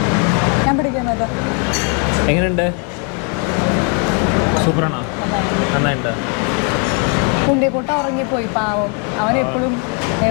ഞാൻ പിടിക്കുന്നത് എങ്ങനെയുണ്ട്? സൂപ്പറാണോ? നന്നായിട്ടുണ്ട്. കുണ്ടിക്കൂട്ട ഉറങ്ങിപ്പോയി, പാവം. അവൻ എപ്പോഴും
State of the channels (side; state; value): right; quieter; 38.6 dB